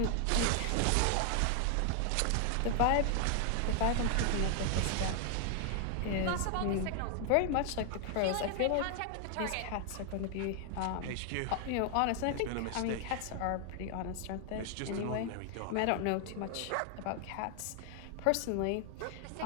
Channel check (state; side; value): different; both; correlation 0.00